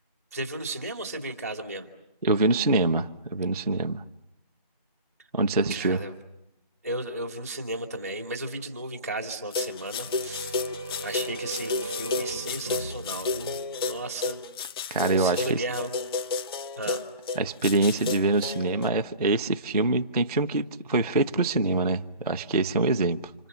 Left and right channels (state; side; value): inverted; both; correlation -0.38